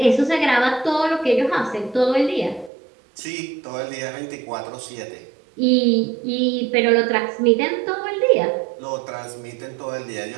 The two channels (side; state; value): left; drops out; at 2.7 s